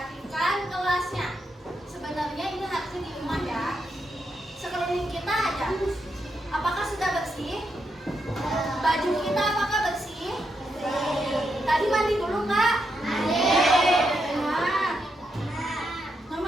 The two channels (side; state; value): both; normal; correlation 0.82